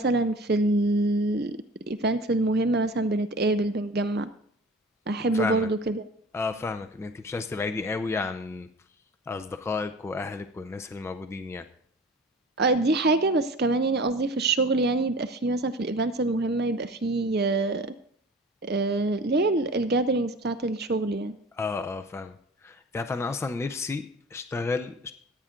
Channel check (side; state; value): both; normal; correlation 0.40